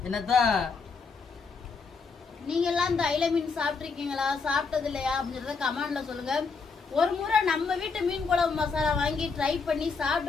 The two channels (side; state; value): right; quieter; 4.9 dB